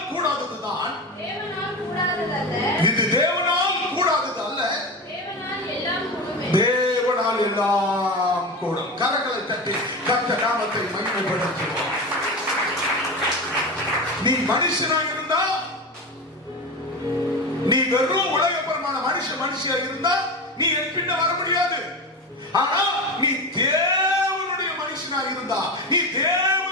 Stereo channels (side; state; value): both; normal; correlation 0.24